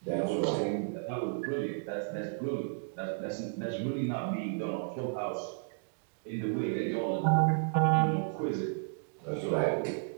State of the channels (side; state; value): left; silent; digital silence